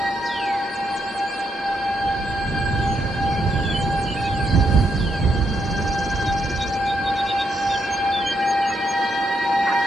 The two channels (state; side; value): normal; both; correlation 0.78